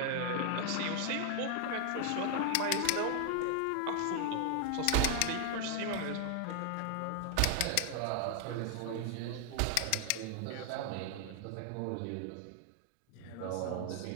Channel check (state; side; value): different; both; correlation 0.00